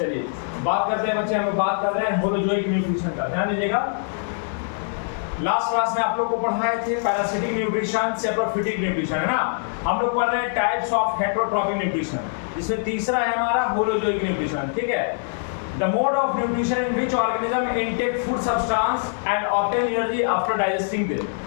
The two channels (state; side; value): silent; right; digital silence